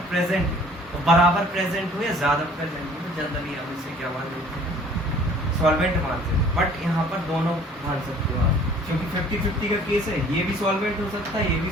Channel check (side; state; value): both; normal; correlation 0.53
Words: प्रेजेंट है तो बराबर प्रेजेंट हो या ज्यादा प्रेजेंट हो तो जनरली हम इसे क्या मान लेते हैं, सॉल्वेंट मानते हैं। बट यहाँ पर दोनों मान सकते हो आप, क्योंकि 50-50 का केस है, ये भी सॉल्वेंट हो सकता है, ये भी